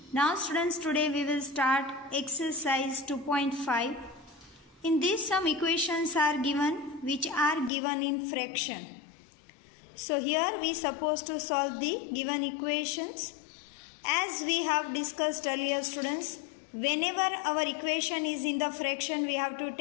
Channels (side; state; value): right; drops out; at 7.7 s